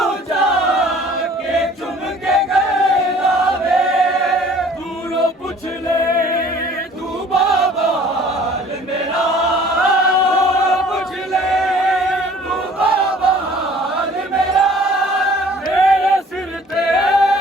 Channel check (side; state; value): both; normal; correlation 0.52